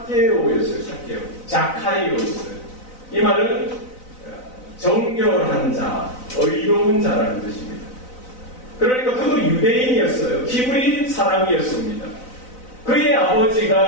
삭개오. 자카이오였어요. 이 말은 정결한 자, 의로운 자라는 뜻입니다. 그러니까 그도 유대인이었어요. 히브리 사람이었습니다. 그의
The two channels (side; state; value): right; late; 4.0 ms